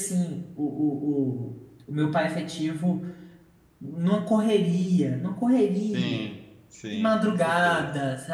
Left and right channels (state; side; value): identical; both; correlation 1.00